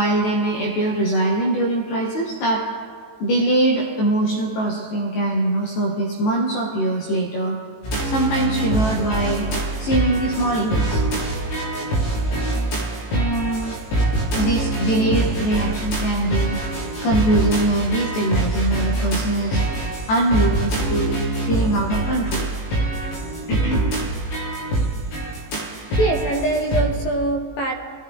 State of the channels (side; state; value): right; late; 18 ms